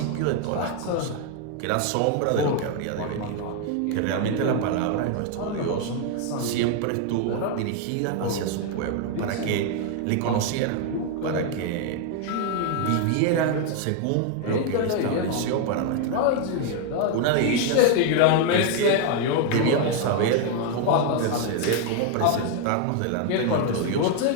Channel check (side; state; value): both; different; correlation 0.00